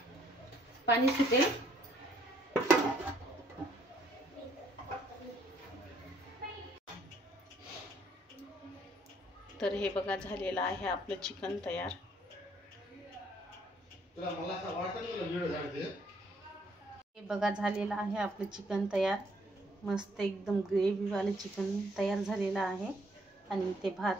पाणी सुटेल. तर हे बघा झालेलं आहे आपलं चिकन तयार. हे बघा झालेलं आहे आपलं चिकन तयार. मस्त एकदम ग्रेव्हीवालं चिकन तयार झालेलं आहे. आणि ते भात.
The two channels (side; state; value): both; normal; correlation 0.66